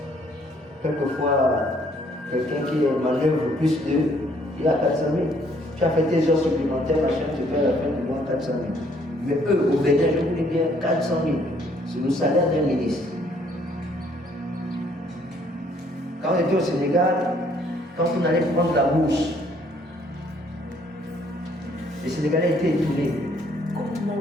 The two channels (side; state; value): both; normal; correlation 0.64